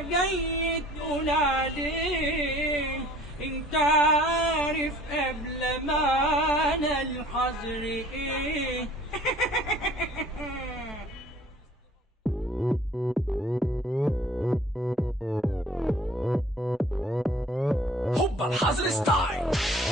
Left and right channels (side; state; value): both; normal; correlation 0.51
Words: جاي تقول عليه؟ انت عارف قبل ما انا الحظر ايه؟ هوبا الحظر ستايل،